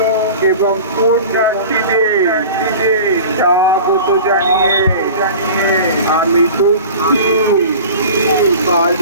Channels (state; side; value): inverted; both; correlation -0.39